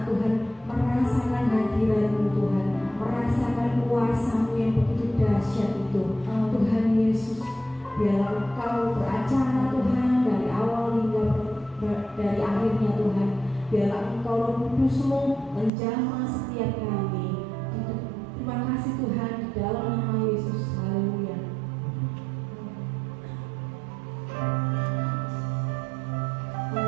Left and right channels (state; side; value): drops out; left; at 15.7 s